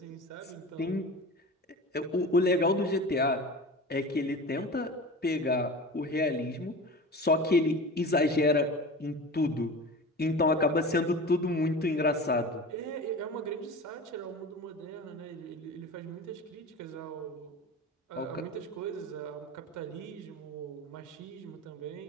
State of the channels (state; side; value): normal; both; correlation 0.33